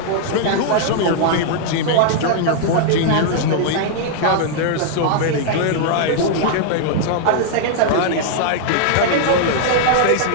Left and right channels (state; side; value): different; both; correlation -0.01